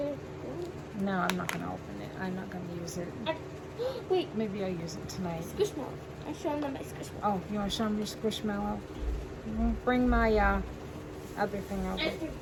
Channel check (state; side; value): identical; both; correlation 1.00